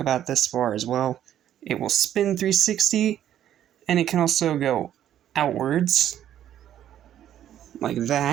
this far as well. It will spin 360, and it can also go outwards like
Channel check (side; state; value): left; quieter; 11.0 dB